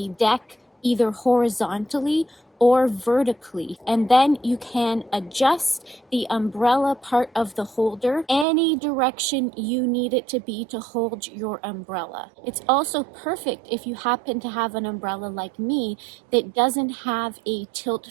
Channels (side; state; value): left; drops out; at 8.5 s